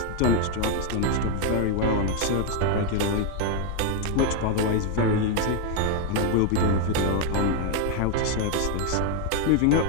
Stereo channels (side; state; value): both; different; correlation 0.01